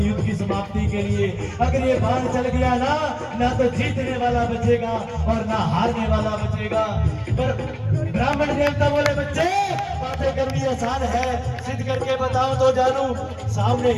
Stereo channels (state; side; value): identical; both; correlation 1.00